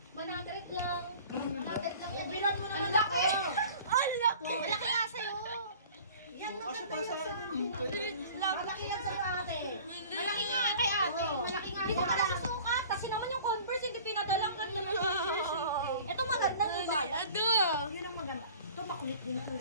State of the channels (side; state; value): both; inverted; correlation -0.46